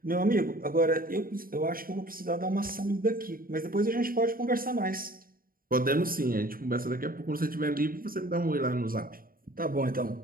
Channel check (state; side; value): late; left; 0.42 ms